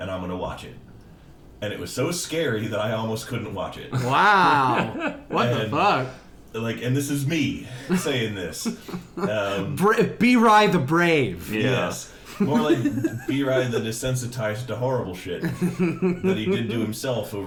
I'm gonna watch it. And it was so scary that I almost couldn't watch it. Wow. What the fuck? Like, and this is me saying this. B-Rye the Brave. Yeah. Yes. More like B-Rye the desensitized to horrible shit that he did to himself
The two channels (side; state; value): both; identical; correlation 1.00